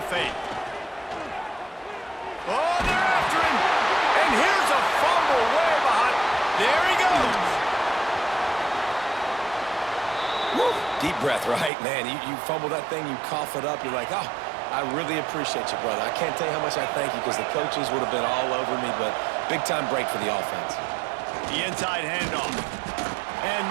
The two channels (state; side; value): drops out; left; at 11.7 s